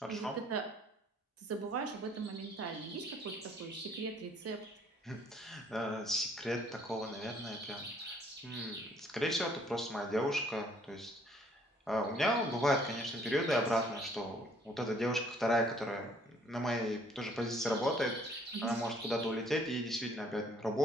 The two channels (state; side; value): normal; both; correlation 0.62